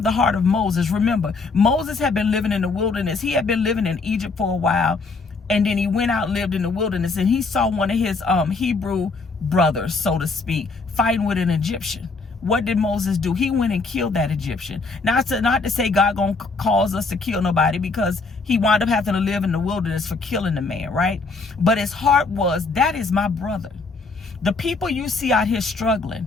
the heart of Moses. Remember, Moses had been living in the wilderness. He had been living in Egypt for a while. And then he went out and lived in the wilderness, and he saw one of his Hebrew brothers, so to speak, fighting with an Egyptian. What did Moses do? He went and killed that Egyptian. Not to say God gonna cause us to kill nobody, because he wound up having to live in the wilderness for killing the man, right? But his heart was, that is my brother. The people you see out here struggling,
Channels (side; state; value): right; quieter; 4.0 dB